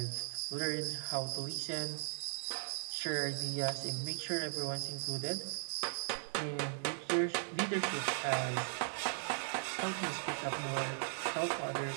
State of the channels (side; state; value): left; silent; digital silence